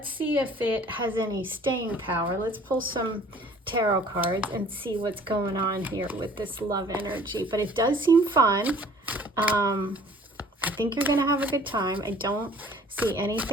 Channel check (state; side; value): normal; both; correlation 0.52